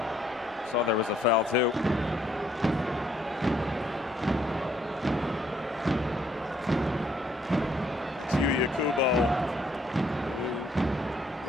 Saw there was a foul too. Yuya Kubo,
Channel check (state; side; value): normal; both; correlation 0.68